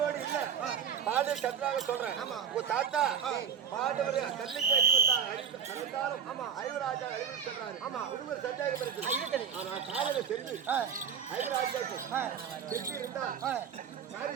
இல்ல, பாண்டவர் சத்ராக சொல்றேன். உங்க தாத்தா பாண்டவர் கல்லுக்கு அழிவுத்தாலும் 5 ராஜா அழிவு சொல்றாரு. ஒருவர் சந்தேகம் இருக்கு. ஆனா காலங்க சென்று 5 ராஜாக்கு சென்று இருந்தா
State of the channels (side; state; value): left; quieter; 7.4 dB